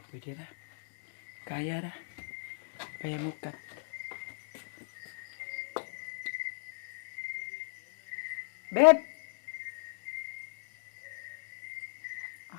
Pwede ra. Kaya ra. Kaya mukat. Babe!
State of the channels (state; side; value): silent; right; digital silence